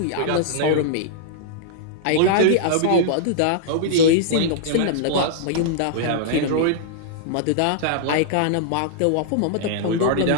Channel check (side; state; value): both; different; correlation -0.02